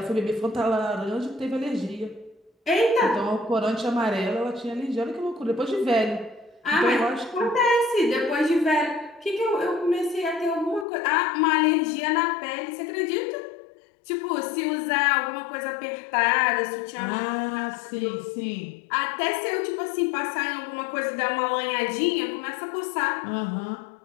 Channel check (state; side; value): drops out; right; at 10.9 s